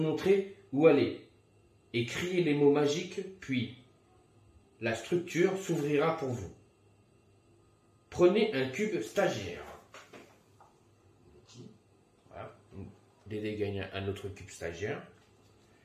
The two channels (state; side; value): identical; both; correlation 1.00